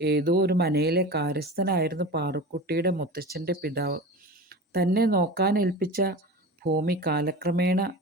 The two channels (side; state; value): both; normal; correlation 0.32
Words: ഏതോ ഒരു മനയിലെ കാര്യസ്ഥനായിരുന്നു പാറുക്കുട്ടിയുടെ മുത്തച്ഛൻ്റെ പിതാവ്. തന്നെ നോക്കാനേൽപ്പിച്ച ഭൂമി കാലക്രമേണ